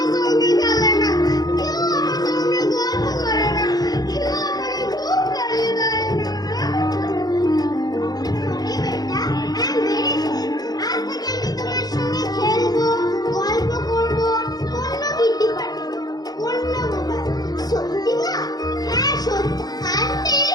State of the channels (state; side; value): late; right; 0.19 ms